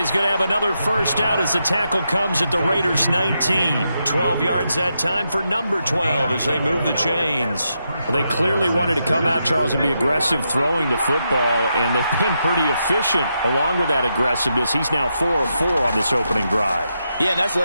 going to have another first down as the tackle comes at the Raiders' 19. 12 yards that time for number 12 as they move the chains. Well, they clearly wanted to come out, Charles, and be aggressive throwing the football, and they've been pretty efficient along with that aggressiveness. He's now 4 of 4 on this opening drive. Yeah, and that's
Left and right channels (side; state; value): both; inverted; correlation -0.84